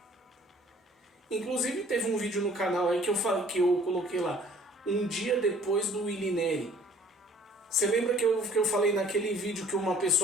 Inclusive teve um vídeo no canal aí que eu coloquei lá, um dia depois do Willy Neri. Você lembra que eu falei naquele vídeo que uma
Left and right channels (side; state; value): both; normal; correlation 0.54